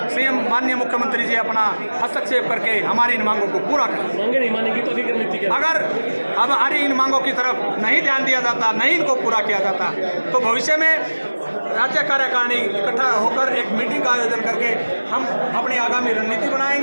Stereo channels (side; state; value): both; inverted; correlation -1.00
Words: सीएम माननीय मुख्यमंत्री जी अपना हस्तक्षेप करके हमारी इन मांगों को पूरा करें। मांगे नहीं मानेगी तो अगर हमारी इन मांगों की तरफ नहीं ध्यान दिया जाता, नहीं इनको पूरा किया जाता, तो भविष्य में राज्य कार्यकारिणी इकट्ठा होकर एक मीटिंग का आयोजन करके हम अपनी आगामी रणनीति